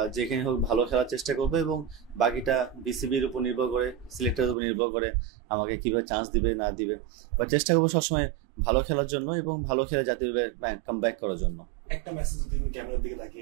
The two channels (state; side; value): drops out; left; at 4.5 s